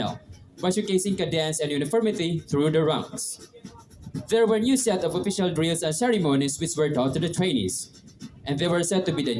by showcasing cadence and uniformity through the ranks. There were new set of official drills and ceremonies which were taught to the trainees, and they were said to be the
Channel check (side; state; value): both; identical; correlation 1.00